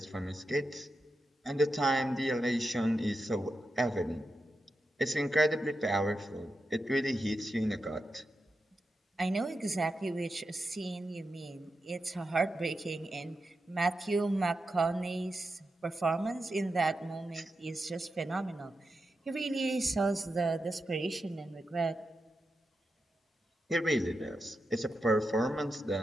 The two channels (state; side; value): normal; both; correlation 0.89